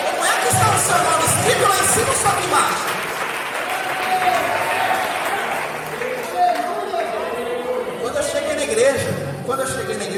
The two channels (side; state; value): both; identical; correlation 1.00